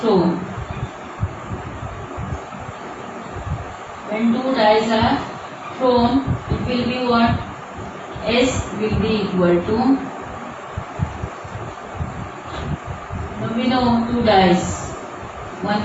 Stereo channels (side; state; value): both; identical; correlation 1.00